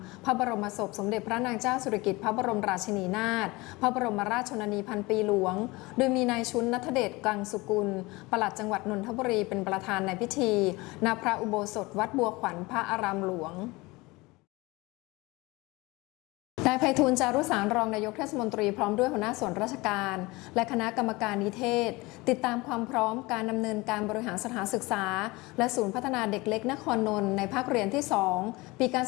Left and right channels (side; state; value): right; quieter; 22.7 dB